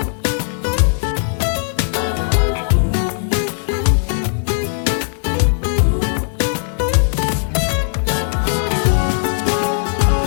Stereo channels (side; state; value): right; silent; 61 dB below the other